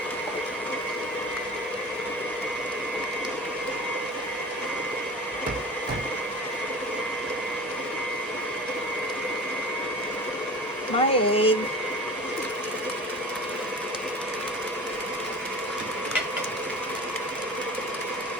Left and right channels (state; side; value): normal; both; correlation 0.36